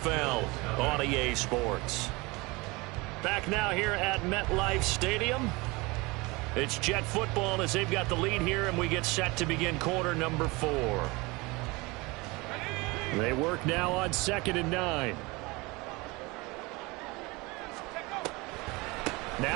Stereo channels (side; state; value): left; quieter; 24.4 dB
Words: on EA Sports. Back now here at MetLife Stadium. It's Jet football as they've got the lead here, and we get set to begin quarter number 4. They work now on 2nd and 9.